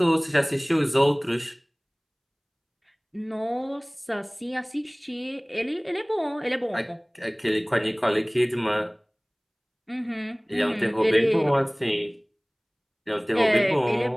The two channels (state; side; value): identical; both; correlation 1.00